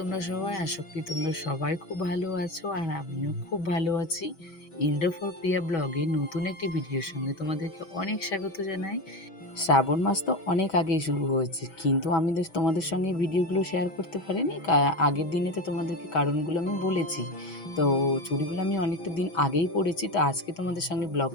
সবাই? আশা করি তোমরা সবাই খুব ভালো আছো আর আমিও খুব ভালো আছি। ইন্দ্র ফর প্রিয়া ব্লগে নতুন একটি ভিডিওর সঙ্গে তোমাদেরকে অনেক স্বাগত জানাই। শ্রাবণ মাস তো অনেক আগেই শুরু হয়েছে, কিন্তু আমি তোমাদের সঙ্গে ভিডিওগুলো শেয়ার করতে পারিনি। আগের দিনে তো তোমাদেরকে কারণগুলো আমি বলেছি। তো চুড়িগুলো আমি অনেকটা দিন আগেই পরেছি, তো আজকে তোমাদের সঙ্গে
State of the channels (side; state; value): right; late; 6.1 ms